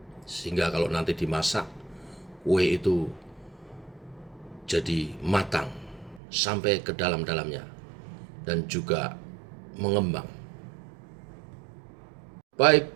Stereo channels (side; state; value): left; drops out; at 6.2 s